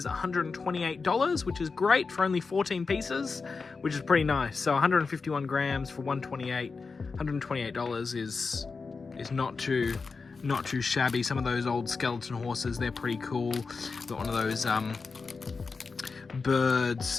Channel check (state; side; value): quieter; right; 4.6 dB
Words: $128, which is great for only 14 pieces, which is pretty nice. So 151 grams for $128 is not too shabby. Some of those old skeleton horses, they're pretty cool. Got one of those